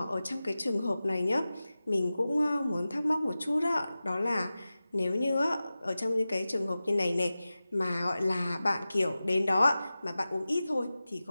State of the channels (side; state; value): both; inverted; correlation -0.95